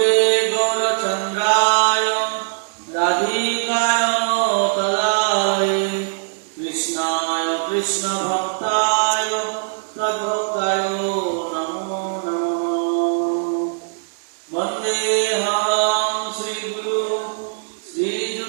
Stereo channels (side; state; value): left; silent; digital silence